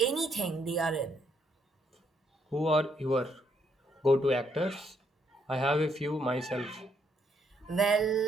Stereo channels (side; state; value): both; normal; correlation 0.73